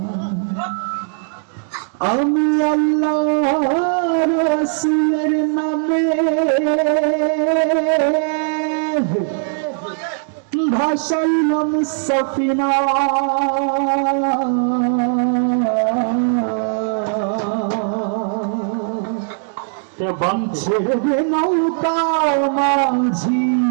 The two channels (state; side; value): silent; left; digital silence